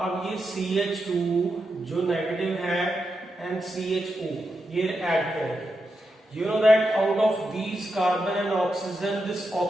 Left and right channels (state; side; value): normal; both; correlation 0.86